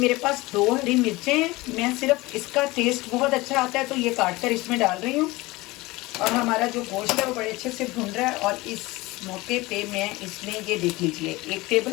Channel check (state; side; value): quieter; right; 21.2 dB